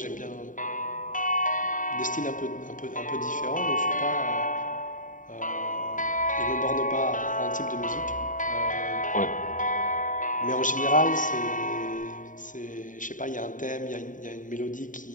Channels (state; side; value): late; right; 0.38 ms